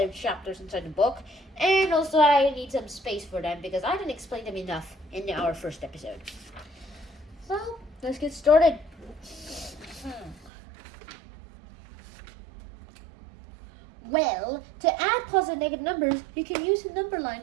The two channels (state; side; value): drops out; left; at 10.5 s